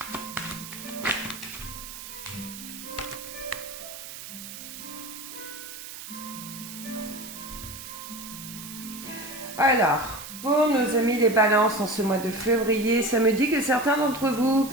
Alors, pour nos amis les balances en ce mois de février, ça me dit que certains d'entre vous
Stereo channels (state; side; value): noise; right; hiss, 11 dB below the sound